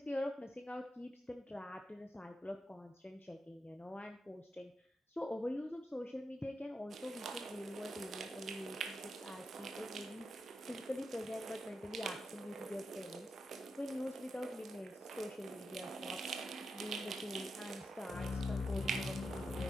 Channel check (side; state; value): both; normal; correlation 0.87